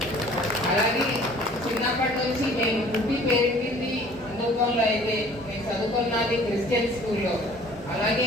అలాగే చిన్నప్పటి నుంచి నేను పుట్టి పెరిగింది హిందుత్వంలో, అయితే నేను చదువుకున్నది క్రిస్టియన్ స్కూల్లో. అలాగే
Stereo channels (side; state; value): both; normal; correlation 0.51